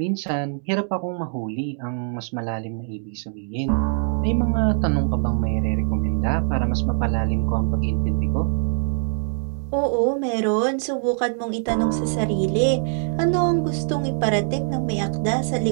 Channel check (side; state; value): left; silent; 59 dB below the other